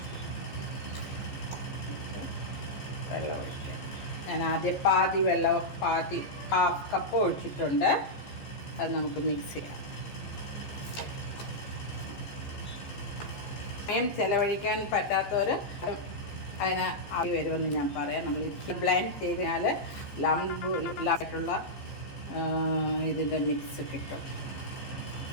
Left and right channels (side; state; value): right; late; 14 ms